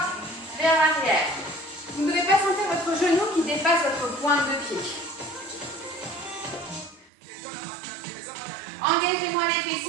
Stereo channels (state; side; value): drops out; left; at 7.1 s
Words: vers l'arrière. Vous ne devez pas sentir votre genou qui dépasse votre pointe de pied. Engagez-moi les